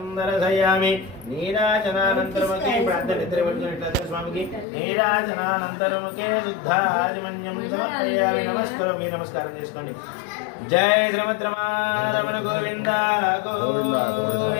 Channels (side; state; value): right; drops out; at 4.7 s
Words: దర్శయామి నీరాజనానంతరముఖే ప్రార్థనిద్రపడుతున్నట్లయితే స్వామికి నీరాజనానంతరముఖే శుద్ధాజమన్యం సమర్పయామి నమస్కారం నమస్కారం చేసుకోండి జై శ్రీమద్రమణ గోవింద